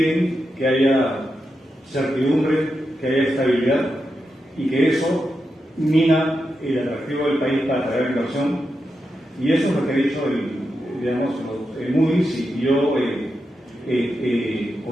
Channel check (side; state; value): both; normal; correlation 0.87